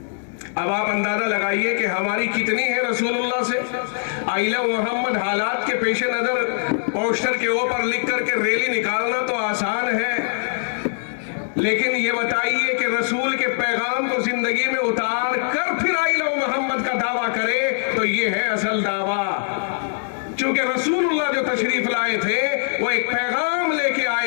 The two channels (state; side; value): silent; right; digital silence